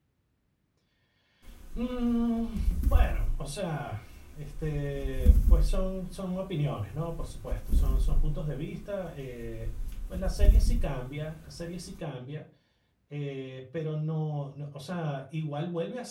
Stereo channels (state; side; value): identical; both; correlation 1.00